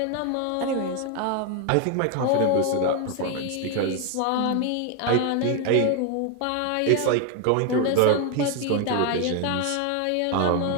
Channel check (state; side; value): different; both; correlation 0.01